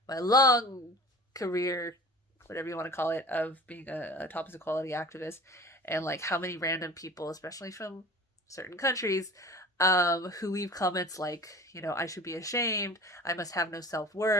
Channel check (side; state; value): both; normal; correlation 0.41